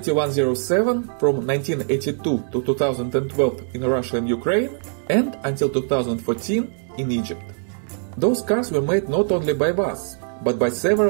from 1982 to 2012 in Russia and Ukraine, and until 2014 in Egypt. Those cars were made not only by VAZ, but by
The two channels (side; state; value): left; silent; 56 dB below the other